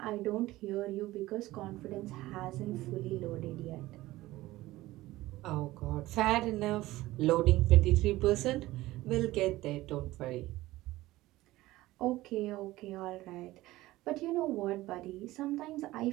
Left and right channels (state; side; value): quieter; left; 17.5 dB